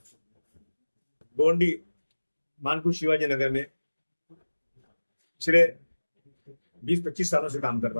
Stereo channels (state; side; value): inverted; both; correlation -1.00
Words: गोंडी मानकुश शिवाजी नगर में पिछले 20-25 सालों से काम कर